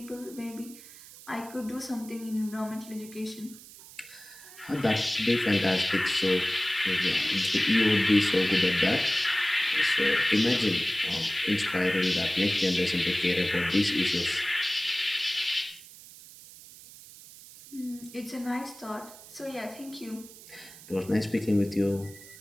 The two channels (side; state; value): right; noise; hiss, 19 dB below the sound